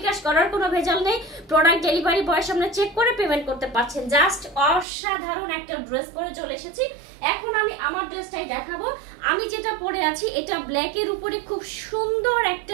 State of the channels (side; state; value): left; drops out; at 4.9 s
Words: করার কোনো ভেজাল নেই। প্রোডাক্ট ডেলিভারি বয়ের সামনে চেক করে পেমেন্ট করতে পারছেন। জাস্ট অসাধারণ একটা ড্রেস পরে চলে এসেছি। এখন আমি আমার ড্রেসটাই দেখাবো। আমি যেটা পরে আছি এটা ব্ল্যাকের উপরে খুব সুন্দর